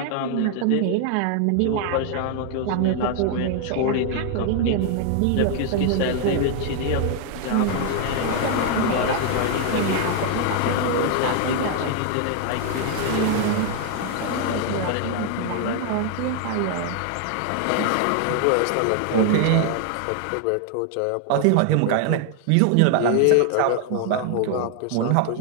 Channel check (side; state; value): both; different; correlation 0.00